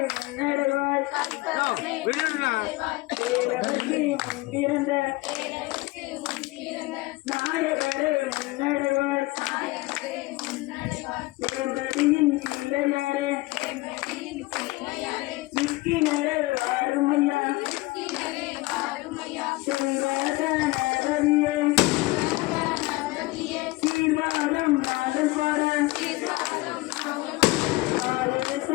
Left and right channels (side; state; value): right; quieter; 21.4 dB